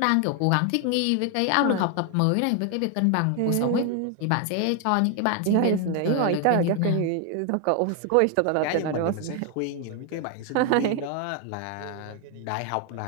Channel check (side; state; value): both; different; correlation 0.01